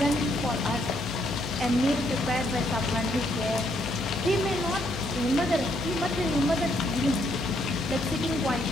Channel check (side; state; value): left; noise; hum, 13 dB below the sound